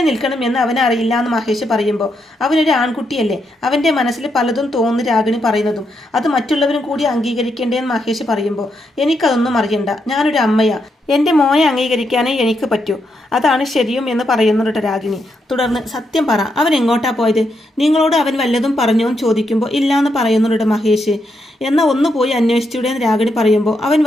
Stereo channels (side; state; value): both; normal; correlation 0.81